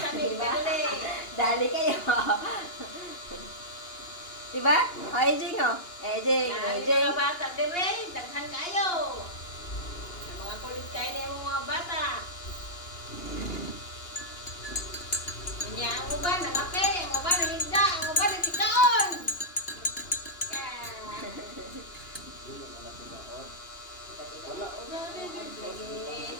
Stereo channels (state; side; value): late; right; 2.8 ms